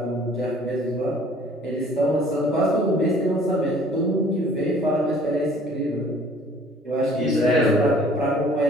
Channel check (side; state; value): both; normal; correlation 0.54